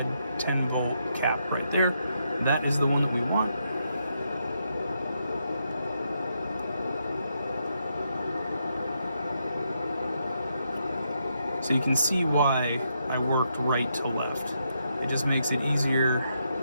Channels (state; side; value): inverted; both; correlation -0.80